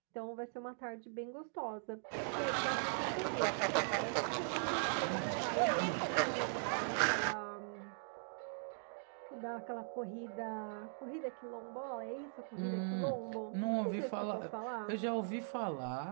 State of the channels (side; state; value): left; silent; digital silence